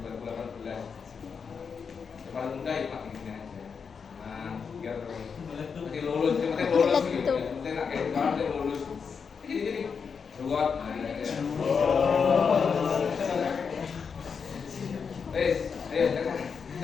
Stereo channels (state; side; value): quieter; right; 6.0 dB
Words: 2018. Yang paling muda ya Pak ini aja. Nah, biar nanti lulus, yang penting lulus gitu. Yang penting nak kayak orang yang lulus. Gini. Buat. Wes, ayo